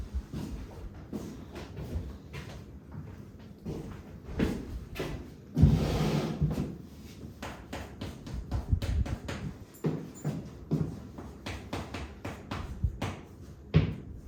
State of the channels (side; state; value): both; identical; correlation 1.00